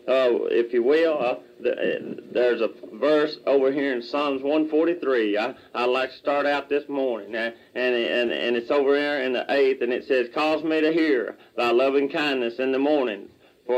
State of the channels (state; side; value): identical; both; correlation 1.00